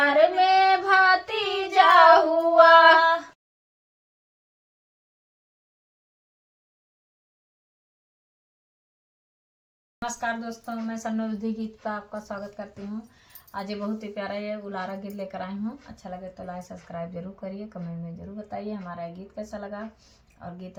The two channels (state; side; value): identical; both; correlation 1.00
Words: में भतीजा हुआ। नमस्कार दोस्तों, मैं सन्नोधी गीत का आपका स्वागत करती हूँ। आज ये बहुत ही प्यारा ये उलारा गीत लेकर आई हूँ। अच्छा लगे तो लाइक सब्सक्राइब जरूर करिए, कमेंट में जरूर बताइए हमारा ये गीत कैसा लगा। और गीत